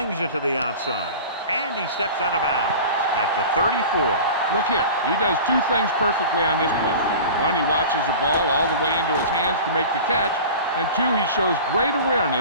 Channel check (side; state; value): both; inverted; correlation -0.36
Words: it to the outside. And he steps out of bounds at the 34. Look here. He does two things perfectly on this play. One, he watches the ball all the way into his hands to make the catch. And two, he shows great